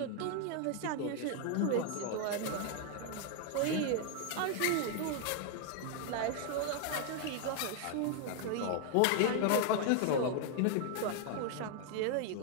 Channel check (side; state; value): both; different; correlation 0.00